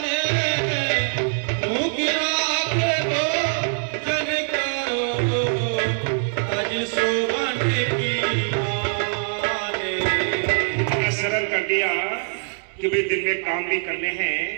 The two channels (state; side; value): silent; left; digital silence